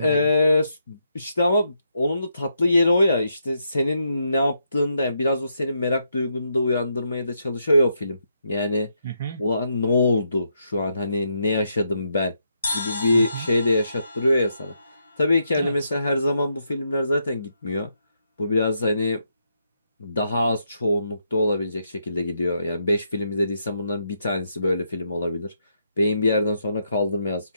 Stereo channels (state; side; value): inverted; both; correlation -0.79